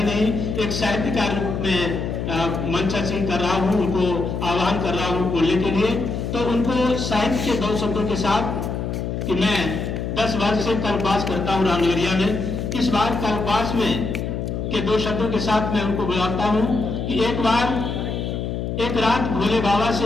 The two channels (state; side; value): noise; left; hum, 3 dB below the sound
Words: नहीं, एक साहित्यकार रूप में मंचासीन कर रहा हूँ, उनको आह्वान कर रहा हूँ बोलने के लिए। तो उनको साहित्य के दो शब्दों के साथ कि मैं 10 वर्ष से कल्पवास करता हूँ रामनगरिया में। इस बार कल्पवास में के दो शब्दों के साथ मैं उनको बुलाता हूँ कि एक रात भोले बाबा